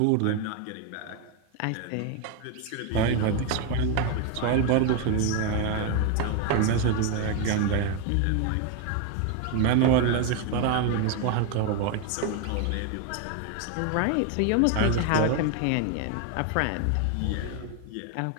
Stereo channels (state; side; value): different; both; correlation 0.01